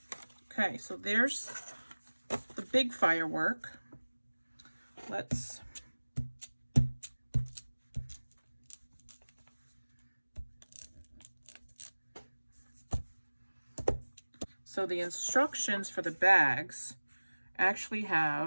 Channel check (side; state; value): both; inverted; correlation -1.00